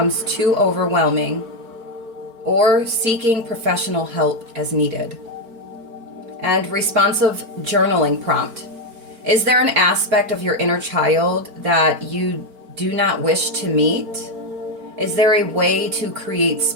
too overwhelming, or seeking professional help as needed. And responsive journaling prompt. Is there an aspect of your inner child that you do not wish to meet? Is there a way to create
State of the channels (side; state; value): left; late; 4.5 ms